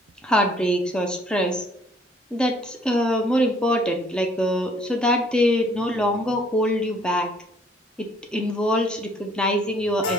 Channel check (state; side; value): normal; both; correlation 0.61